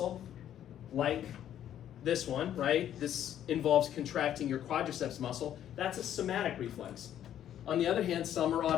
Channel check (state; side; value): quieter; right; 10.8 dB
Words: like this one, right? This involves contracting your quadriceps muscle. That's a somatic reflex. On the other hand, some are